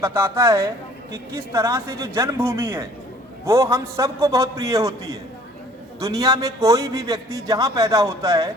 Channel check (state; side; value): normal; both; correlation 0.54